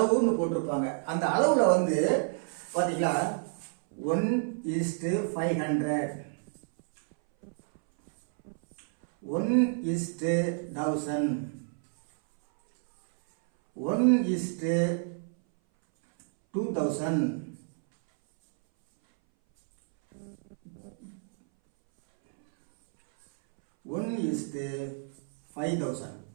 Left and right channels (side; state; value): left; silent; 58 dB below the other